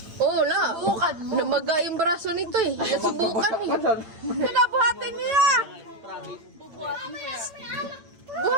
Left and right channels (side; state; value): left; late; 8.9 ms